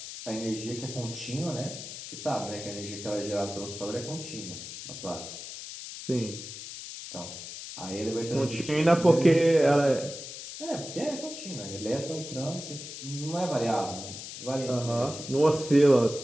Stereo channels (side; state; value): left; noise; hiss, 10 dB below the sound